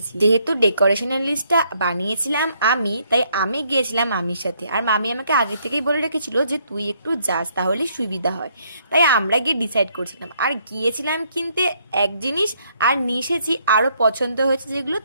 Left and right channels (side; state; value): both; inverted; correlation -0.70